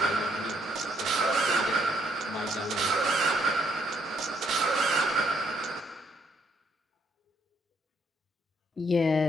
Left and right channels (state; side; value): normal; both; correlation 0.71